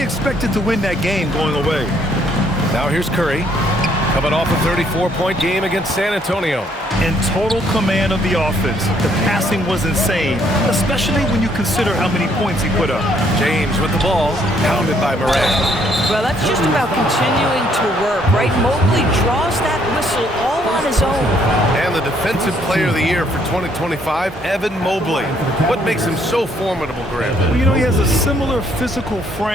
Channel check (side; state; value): both; normal; correlation 0.67